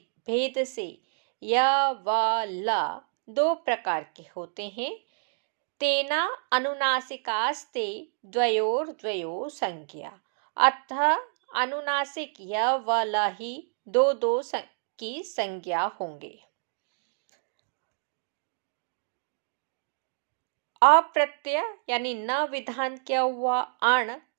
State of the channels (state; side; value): silent; left; 59 dB below the other